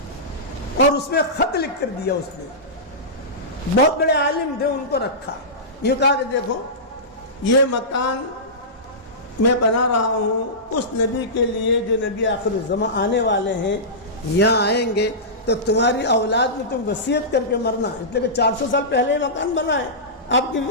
اور اس میں خط لکھ کر دیا اس نے، بہت بڑے عالم تھے ان کو رکھا، یہ کہا کہ دیکھو یہ مکان میں بنا رہا ہوں اس نبی کے لیے جو نبی آخر الزمان آنے والے ہیں، یہاں آئیں گے تو تمہاری اولاد میں تم وصیت کر کے مرنا، اس لیے کہ 400 سال پہلے یہ مکان بنا ہے آپ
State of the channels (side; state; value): both; normal; correlation -0.18